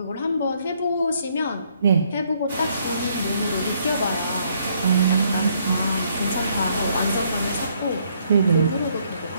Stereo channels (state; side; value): inverted; both; correlation -0.69